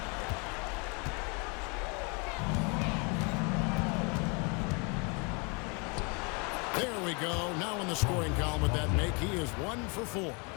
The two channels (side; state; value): right; quieter; 32.5 dB